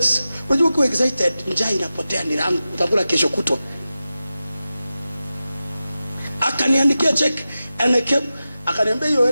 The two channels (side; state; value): both; inverted; correlation -0.94